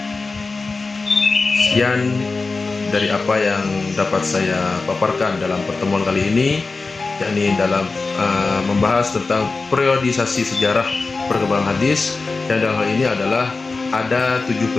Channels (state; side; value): quieter; right; 3.9 dB